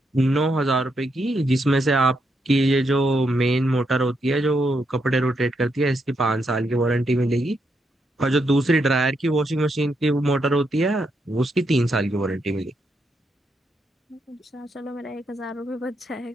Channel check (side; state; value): both; normal; correlation 0.80